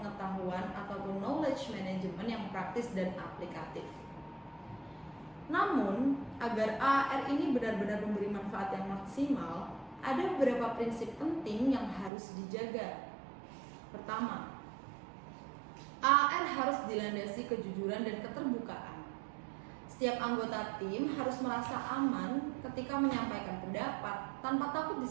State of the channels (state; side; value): drops out; left; at 12.1 s